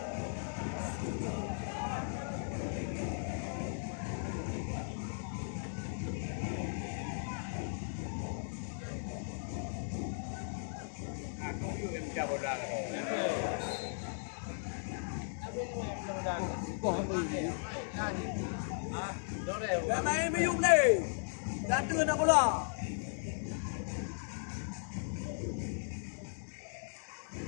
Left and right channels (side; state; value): right; silent; digital silence